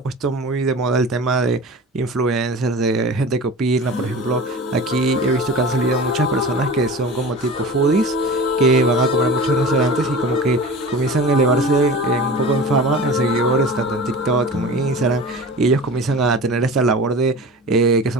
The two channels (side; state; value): both; normal; correlation 0.35